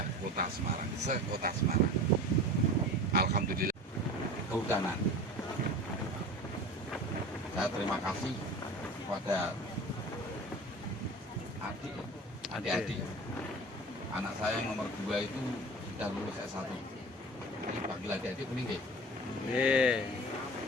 Kota Semarang, se-Kota Semarang. Alhamdulillah. Kehutanan. Saya terima kasih kepada adik-adik. Anak saya yang nomor 2 itu sudah lulus S1. Jadi panggil adik-adik kuning deh.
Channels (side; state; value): both; normal; correlation 0.36